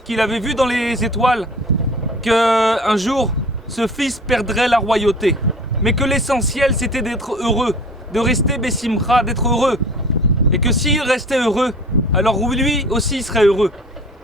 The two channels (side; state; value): both; normal; correlation 0.44